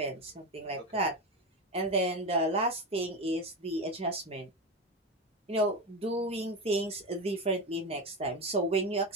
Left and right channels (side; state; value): both; normal; correlation 0.19